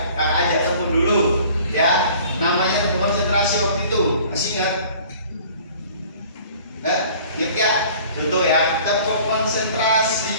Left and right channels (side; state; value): both; inverted; correlation -0.50